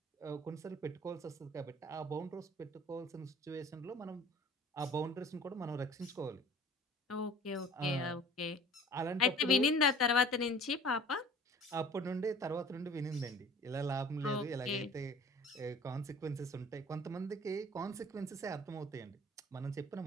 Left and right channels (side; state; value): both; normal; correlation 0.47